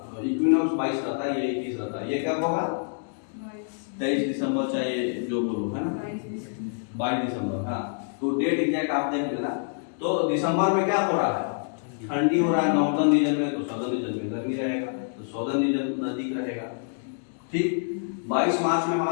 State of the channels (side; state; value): right; silent; digital silence